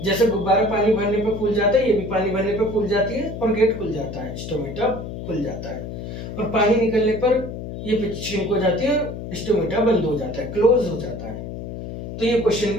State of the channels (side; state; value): left; noise; hum, 8 dB below the sound